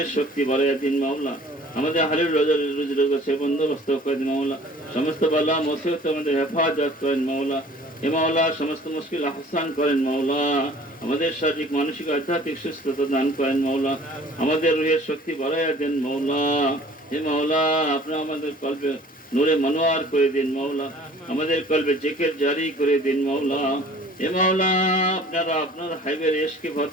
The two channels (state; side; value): normal; both; correlation 0.50